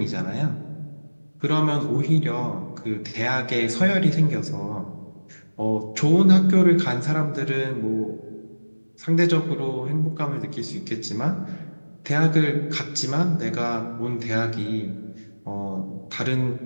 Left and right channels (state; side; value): inverted; both; correlation -1.00